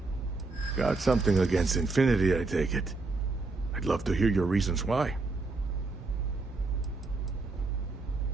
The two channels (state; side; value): quieter; left; 3.5 dB